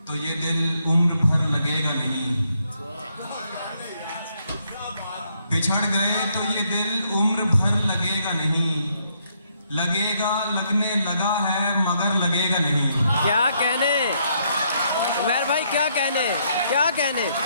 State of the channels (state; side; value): inverted; both; correlation -0.73